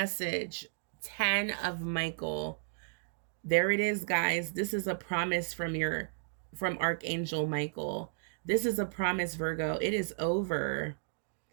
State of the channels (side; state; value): left; silent; digital silence